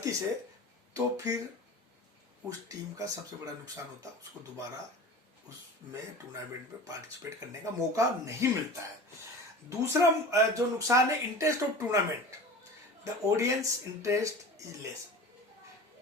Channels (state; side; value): normal; both; correlation 0.36